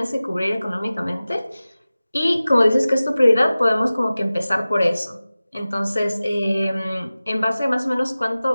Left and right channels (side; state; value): both; inverted; correlation -0.97